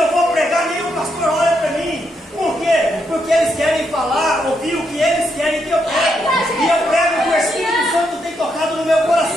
vou pregar, nem o pastor olha para mim. Por quê? Porque eles querem falar, ouvir o que eles querem que eu pregue. E eu prego que o Espírito Santo tem tocado no meu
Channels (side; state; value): both; normal; correlation 0.79